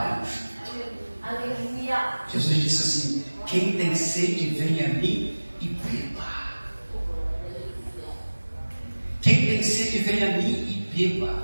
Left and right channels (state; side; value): inverted; both; correlation -1.00